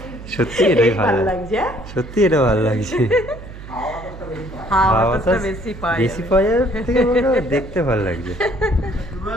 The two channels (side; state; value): right; noise; hum, 14 dB below the sound